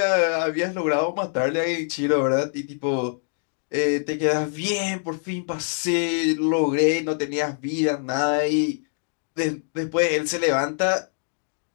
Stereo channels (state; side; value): silent; right; 62 dB below the other